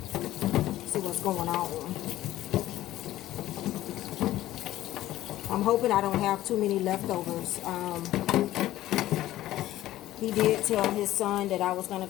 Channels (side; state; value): right; quieter; 14.8 dB